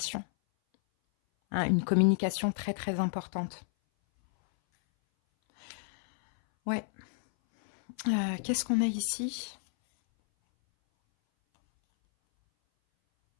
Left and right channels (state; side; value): silent; right; 57 dB below the other